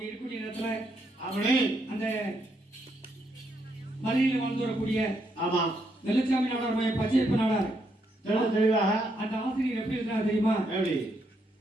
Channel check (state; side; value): normal; both; correlation 0.77